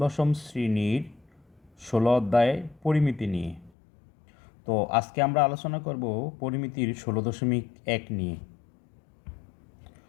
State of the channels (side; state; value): right; drops out; at 3.7 s